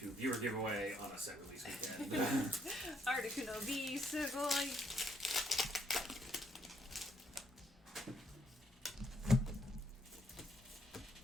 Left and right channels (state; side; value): normal; both; correlation 0.72